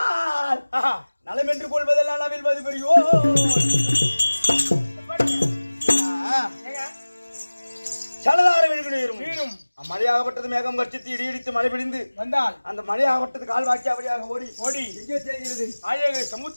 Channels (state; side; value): inverted; both; correlation -1.00